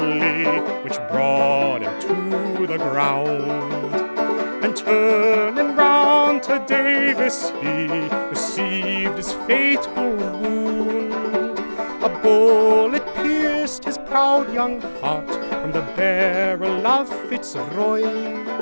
which brought him to the ground, and turning round to Davis, he received his fatal wound. A bullet pierced his proud young heart from the barrel of Fitzroy.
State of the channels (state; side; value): inverted; both; correlation -1.00